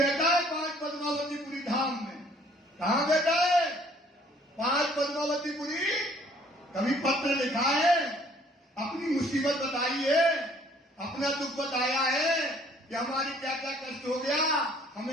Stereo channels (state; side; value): normal; both; correlation 0.59